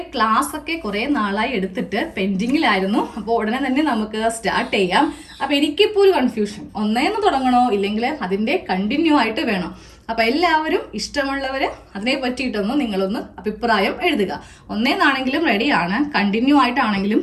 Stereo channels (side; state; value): both; identical; correlation 1.00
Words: ക്ലാസ് ഒക്കെ കുറേ നാളായി എടുത്തിട്ട് പെൻഡിങ്ങിലായിരുന്നു. അപ്പോൾ ഉടനെ തന്നെ നമുക്ക് സ്റ്റാർട്ട് ചെയ്യാം. അപ്പോൾ എനിക്കിപ്പോൾ ഒരു കൺഫ്യൂഷൻ, ഒന്നേന്ന് തുടങ്ങണോ ഇല്ലെങ്കിൽ അതിൻ്റെ കണ്ടിന്യൂ ആയിട്ട് വേണോ? അപ്പോൾ എല്ലാവരും ഇഷ്ടമുള്ളവർ അതിനെ പറ്റിയിട്ടൊന്ന് നിങ്ങളൊന്ന് അഭിപ്രായം എഴുതുക. ഒന്നേന്നാണെങ്കിലും റെഡിയാണ്, കണ്ടിന്യൂ ആയിട്ടാണെങ്കിലും